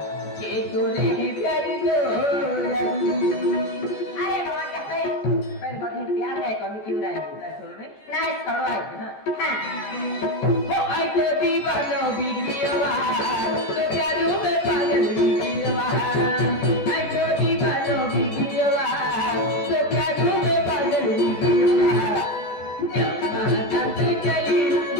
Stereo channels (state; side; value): late; right; 14 ms